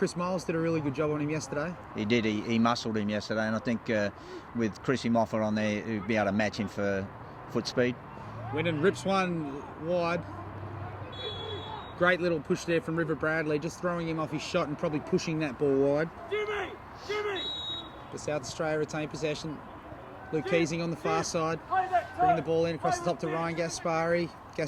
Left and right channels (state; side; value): identical; both; correlation 1.00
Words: Miles did a really good job on him yesterday. He did. He muscled him yesterday, and I think with Chrissy Moffat on there, he'd be able to match him for foot speed. Winnan rips one wide. Great little push there from River Bradley, just throwing him off his shot and probably pushing that ball wide. The South Australia retain possession. Luke Keesing on the far side, bringing the ball in across the top to Ryan Gaspari.